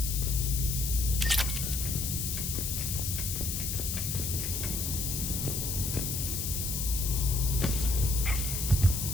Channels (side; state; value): left; noise; hiss, 2 dB below the sound